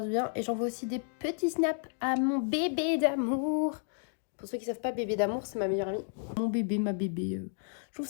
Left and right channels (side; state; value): right; silent; 57 dB below the other